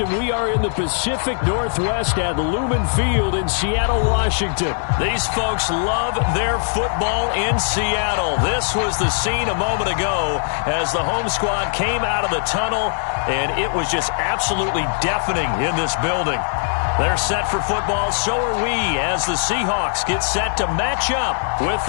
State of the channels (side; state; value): right; silent; digital silence